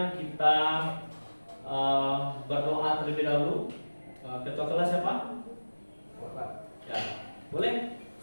kita berdoa terlebih dahulu. Ketua kelas siapa? Ya, boleh?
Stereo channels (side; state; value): both; inverted; correlation -1.00